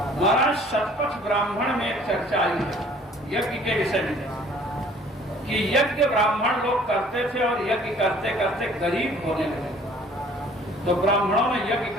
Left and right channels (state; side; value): normal; both; correlation 0.54